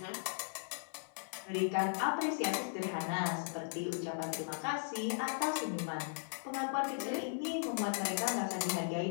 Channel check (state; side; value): silent; right; 53 dB below the other